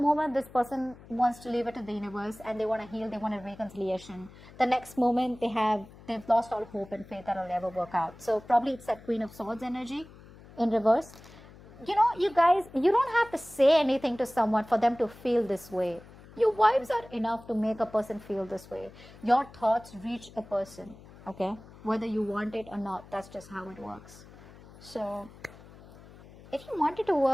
moment this person wants to leave it to the universe and they want to heal, they want a reconciliation. The next moment they've lost all hope and faith that it'll ever work out. So probably it's that Queen of Swords energy in reverse. You guys, you don't have to say anything to someone for them to feel this way. Your vibes are enough to make a person feel this way. Your thoughts reach a person, okay? Whether you want it or not, that's just how it works. So, if you want it to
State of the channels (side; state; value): left; noise; hum, 20 dB below the sound